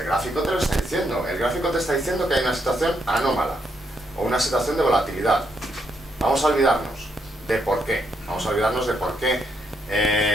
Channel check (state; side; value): normal; both; correlation 0.77